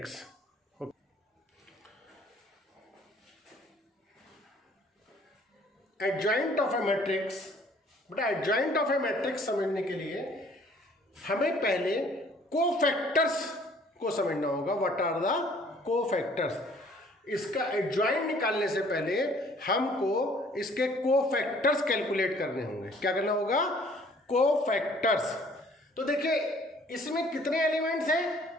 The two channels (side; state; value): both; normal; correlation 0.57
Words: Adjoint of a matrix, बेटा एडजॉइंट ऑफ अ मैट्रिक्स समझने के लिए हमें पहले कोफैक्टर्स को समझना होगा। What are the cofactors? इसका एडजॉइंट निकालने से पहले हमको इसके कोफैक्टर्स कैलकुलेट करने होंगे। क्या करना होगा? कोफैक्टर्स। तो देखिए इसमें कितने एलिमेंट्स हैं?